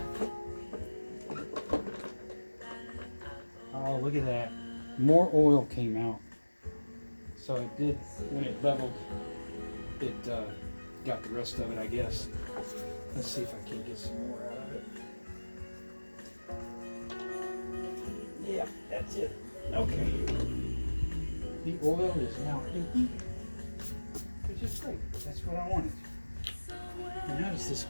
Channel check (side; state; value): both; inverted; correlation -1.00